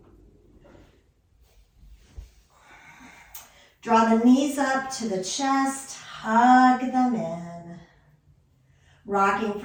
Draw the knees up to the chest, hug them in. Rocking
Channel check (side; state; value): both; identical; correlation 1.00